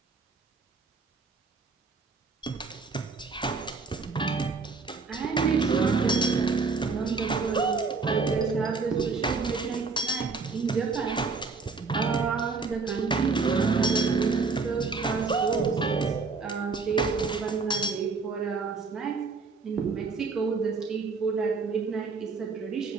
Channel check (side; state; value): left; quieter; 4.5 dB